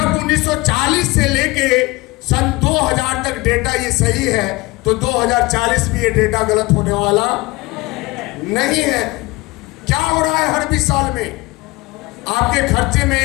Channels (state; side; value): quieter; right; 22.3 dB